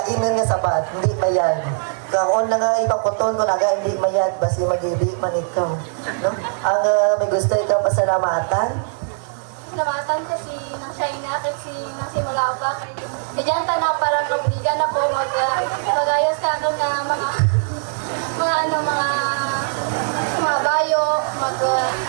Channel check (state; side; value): silent; left; 64 dB below the other